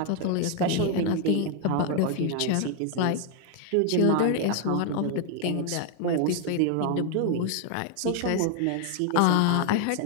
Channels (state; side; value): different; both; correlation 0.00